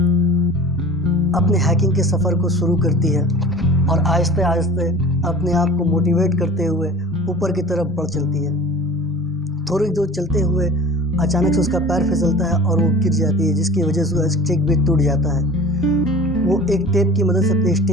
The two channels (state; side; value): normal; both; correlation 0.41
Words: अपने हाइकिंग के सफ़र को शुरू करती है और आहिस्ते आहिस्ते अपने आप को मोटिवेट करते हुए ऊपर की तरफ बढ़ चलती है। थोड़ी दूर चलते हुए अचानक से उसका पैर फिसलता है और वो गिर जाती है, जिसकी वजह से उसका स्टिक भी टूट जाता है। वो एक टेप की मदद से अपने